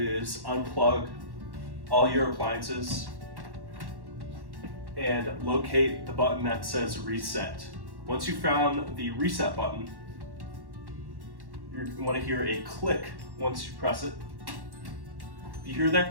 unplug all your appliances and locate the button that says reset. Once you found the reset button, you want to hear a click once you press it. You hear that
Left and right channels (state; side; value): late; left; 1.1 ms